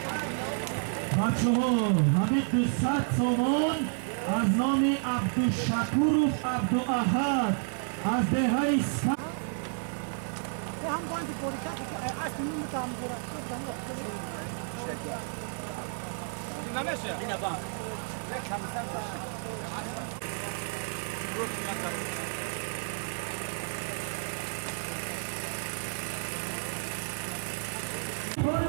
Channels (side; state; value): left; silent; 57 dB below the other